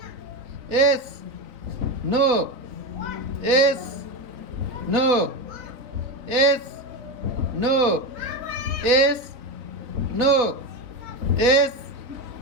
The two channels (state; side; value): late; left; 4.1 ms